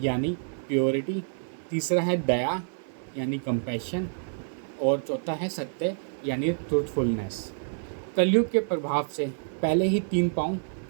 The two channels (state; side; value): silent; left; 58 dB below the other